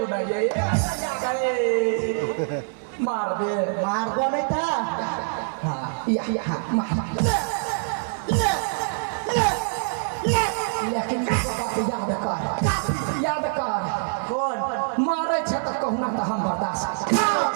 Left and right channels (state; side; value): silent; left; digital silence